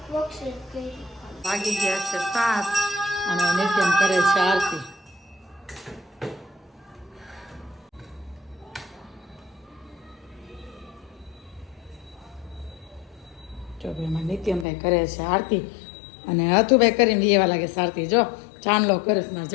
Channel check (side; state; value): right; drops out; at 14.7 s